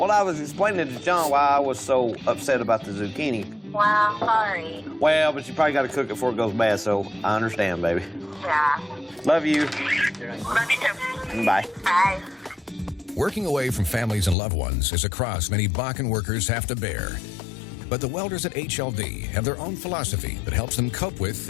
I was explaining to John why I was so upset about the zucchini. Well, sorry. Well, but you probably got to cook it before it goes bad, so I understand, baby. Yeah. Love you. Love you too. Bye. Bye. Working away from families and loved ones is a cross many Bakken workers have to bear. But the welders at HLD have their own philosophy that helps them cope with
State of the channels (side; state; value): right; drops out; at 14.4 s